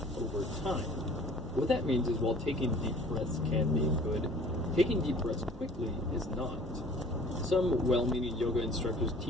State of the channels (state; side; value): normal; both; correlation 0.50